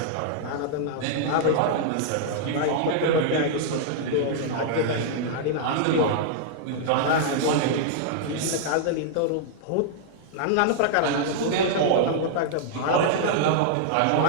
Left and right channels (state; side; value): different; both; correlation -0.01